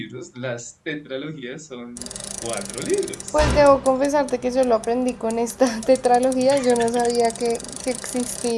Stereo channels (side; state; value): both; identical; correlation 1.00